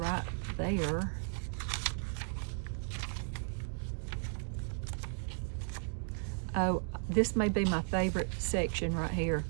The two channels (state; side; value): silent; left; 54 dB below the other